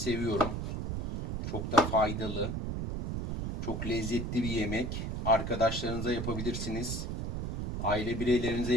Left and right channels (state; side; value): noise; right; rumble, 3 dB below the sound